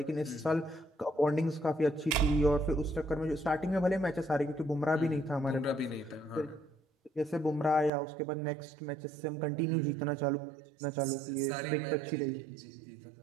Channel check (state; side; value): drops out; left; at 7.9 s